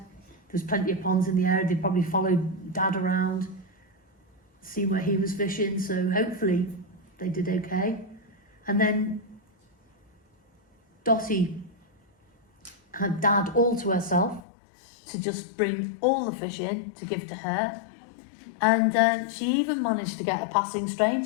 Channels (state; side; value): drops out; right; at 14.4 s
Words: There's plenty of ponds in the area. They probably followed Dad around, see where he was fishing. So hopefully they did okay. And then Dottie had Dad all to herself to just bring all the fish in to give to her. And she even managed to get a passing